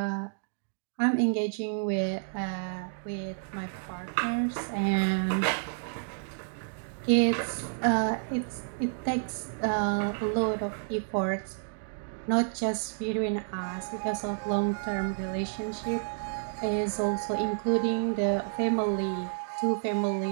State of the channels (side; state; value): left; silent; digital silence